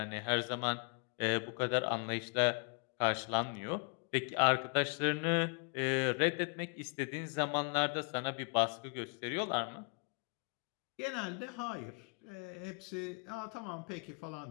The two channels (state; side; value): quieter; right; 37.3 dB